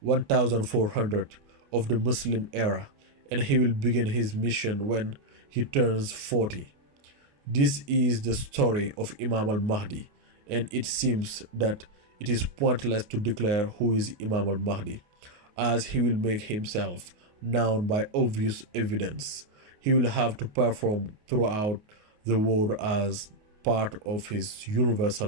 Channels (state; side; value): late; left; 28 ms